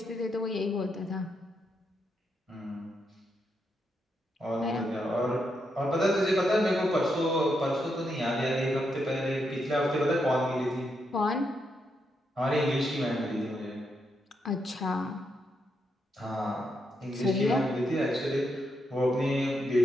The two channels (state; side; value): normal; both; correlation 0.81